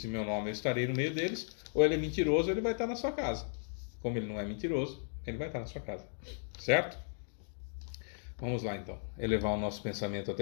em meu nome, eu estarei no meio deles. Ou ele é mentiroso, ou ele vai estar na sua casa. Como ele não é mentiroso, ele vai estar na sua casa, certo? Vamos lá então, elevar o nosso pensamento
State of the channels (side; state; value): right; silent; digital silence